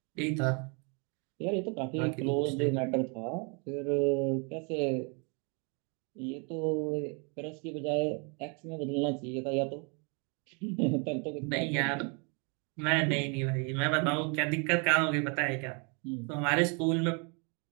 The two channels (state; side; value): quieter; left; 34.7 dB